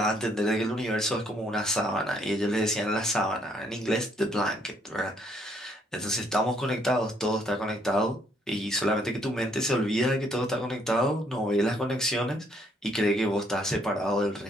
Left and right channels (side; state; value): both; normal; correlation 0.68